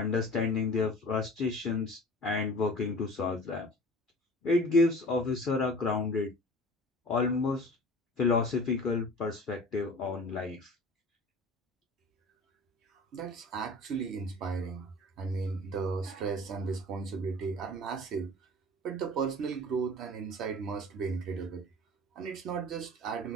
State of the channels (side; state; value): both; normal; correlation 0.41